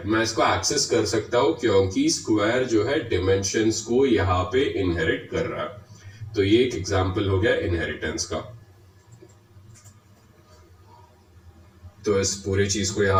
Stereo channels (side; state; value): both; identical; correlation 1.00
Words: मैं इसको एक्सेस कर सकता हूँ क्योंकि स्क्वायर जो है डिमेंशंस को यहाँ पे इनहेरिट कर रहा है। तो ये एक एग्जांपल हो गया इनहेरिटेंस का। तो इस पूरी चीज को